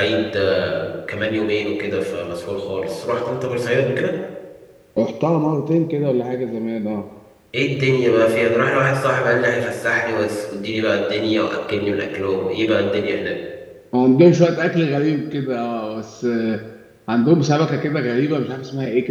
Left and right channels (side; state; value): both; identical; correlation 1.00